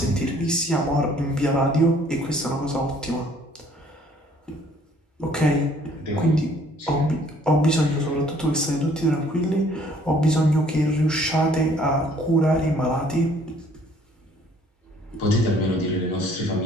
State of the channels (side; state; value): both; normal; correlation 0.59